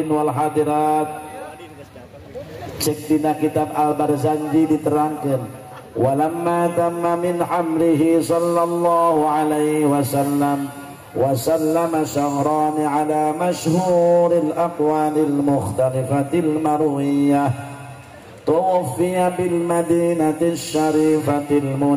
wal hadirat, cek dina kitab Al-Barzanji diterangkeun, walamma tamma min hamlihi sallallahu alaihi wasallam وسلم شهران على مشهور الأقوال المختلفة المروية توفي بالمدينة الشريفة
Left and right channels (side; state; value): both; identical; correlation 1.00